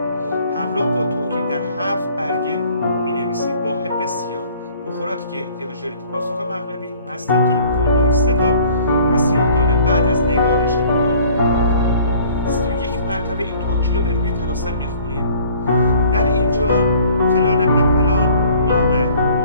همراه با توکید در 7 برگه مینویسید با حب سیاه. بخوراتی که احتیاج دارید: پاسخ مغربی، مستکی، کندر، سداب و سیاه‌دانه. بعد از نگارش 21 مرتبه این توکیل رو به روی طلاسم میخونید. در اینجا فلان ابن فلان نام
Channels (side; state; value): both; inverted; correlation -0.54